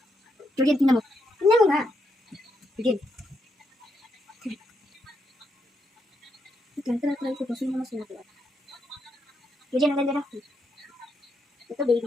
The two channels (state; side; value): normal; both; correlation 0.80